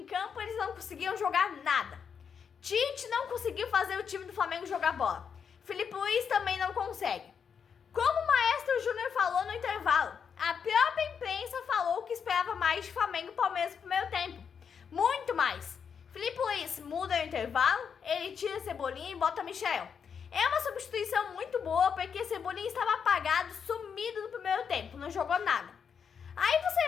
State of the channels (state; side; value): quieter; right; 6.9 dB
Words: campo e eles não conseguiam jogar nada. Tite não conseguiu fazer o time do Flamengo jogar bola. Filipe Luís também não consegue. Como o Maestro Júnior falou no intervalo, a própria imprensa falou que esperava mais de Flamengo e Palmeiras no primeiro tempo. Muito mais. Filipe Luís muda no intervalo, ele tira Cebolinha e bota Michel. É uma substituição muito boa, porque Cebolinha estava apagado, sumido no primeiro tempo, não jogou nada. Aí